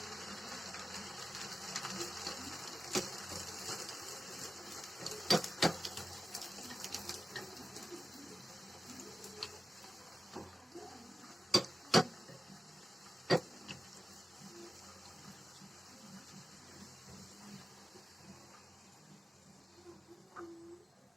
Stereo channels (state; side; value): normal; both; correlation 0.95